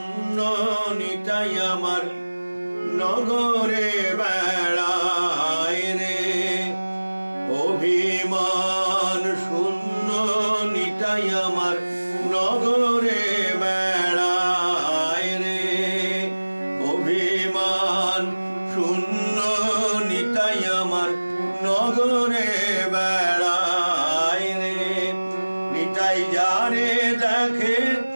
নিতাই আমার নগরে বেড়ায় রে। অভিমান শূন্য নিতাই আমার নগরে বেড়ায় রে। অভিমান শূন্য নিতাই আমার নগরে বেড়ায় রে। নিতাই যারে দেখে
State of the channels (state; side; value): inverted; both; correlation -1.00